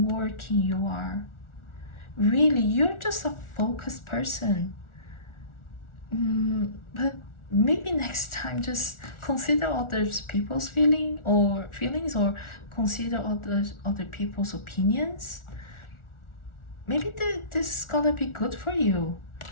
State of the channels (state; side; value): late; right; 1.4 ms